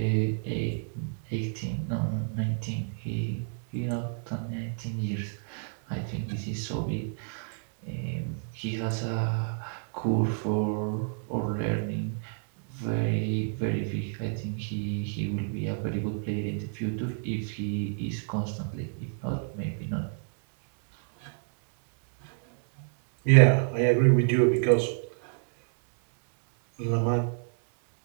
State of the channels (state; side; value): silent; left; 58 dB below the other